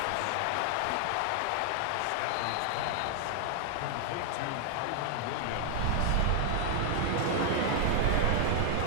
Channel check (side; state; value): both; different; correlation 0.00